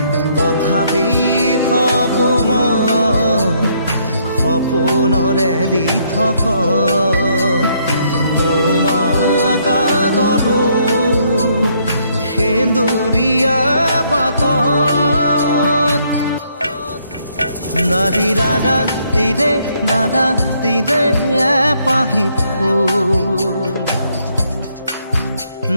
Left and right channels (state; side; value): inverted; both; correlation -0.70